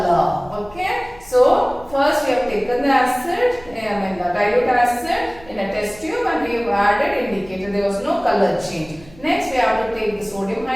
Okay. So first we have taken the acid, the dilute acid in a test tube and we have added indicator. There was no color change. Next we have to take the sodium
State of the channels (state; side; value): noise; right; rumble, 23 dB below the sound